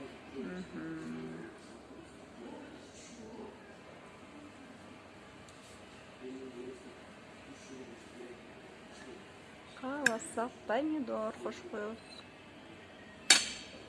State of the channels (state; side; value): identical; both; correlation 1.00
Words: кааласак помидор кошуп коебуз.